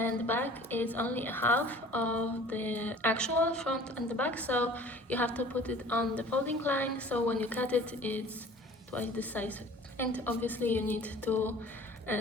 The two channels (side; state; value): both; normal; correlation 0.47